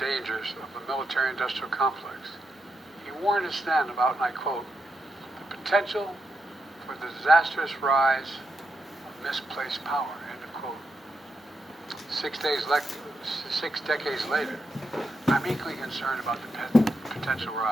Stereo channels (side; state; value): both; normal; correlation 0.84